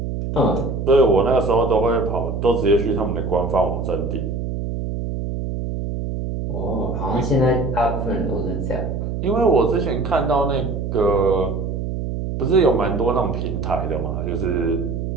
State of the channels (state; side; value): noise; right; hum, 3 dB below the sound